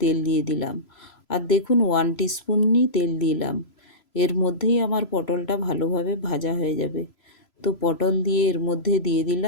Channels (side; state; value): right; late; 3.0 ms